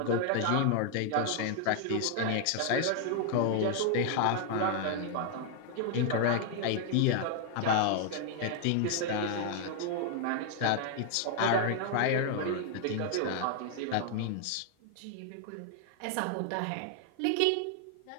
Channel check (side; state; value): both; different; correlation 0.00